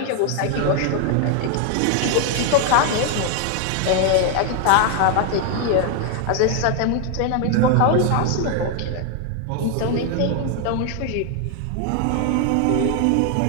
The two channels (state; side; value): different; both; correlation 0.00